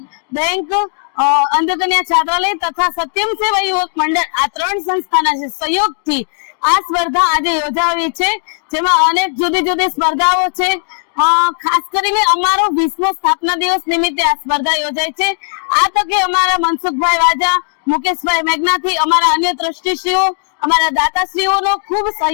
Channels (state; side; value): silent; right; 70 dB below the other